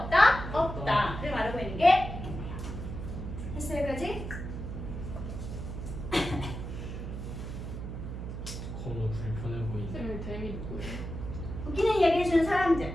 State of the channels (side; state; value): right; noise; hum, 7 dB below the sound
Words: 없다? 없다를 말하고 있는 게 있네요. 했어요 여기까지? 너무 불편해 보이네. 쌤이 댐이 누구예요? 웃기는 이야기 해주는 사람들.